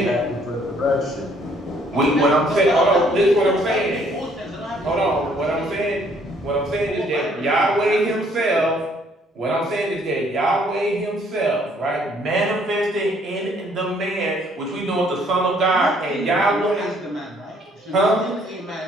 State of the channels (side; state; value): both; normal; correlation 0.64